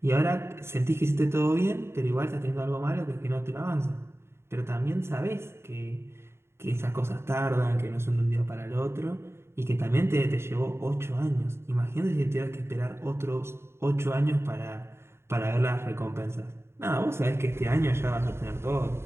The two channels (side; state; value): left; late; 0.12 ms